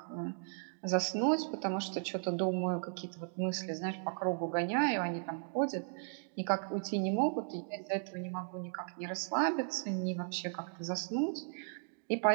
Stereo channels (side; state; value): left; silent; digital silence